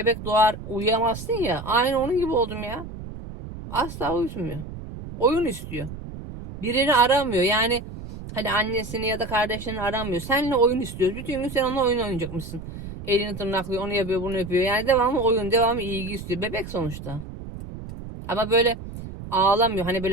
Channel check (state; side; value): noise; right; rumble, 11 dB below the sound